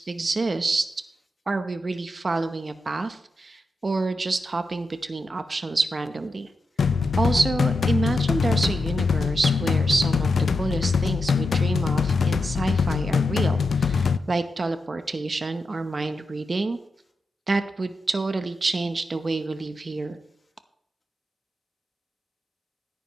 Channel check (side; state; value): both; normal; correlation 0.87